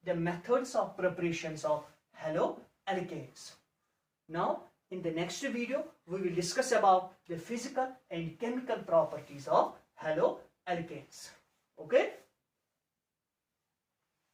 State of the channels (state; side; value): identical; both; correlation 1.00